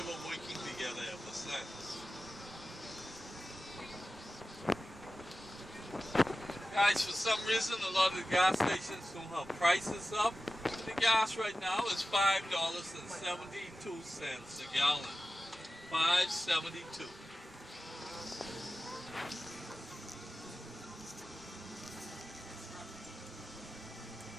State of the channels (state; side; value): normal; both; correlation 0.94